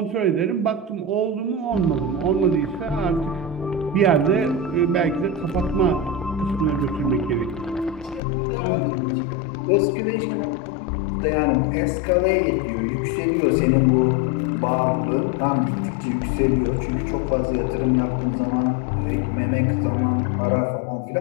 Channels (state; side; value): drops out; right; at 8.2 s